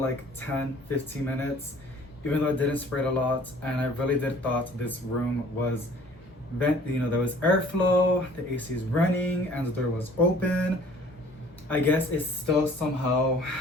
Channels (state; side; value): normal; both; correlation 0.52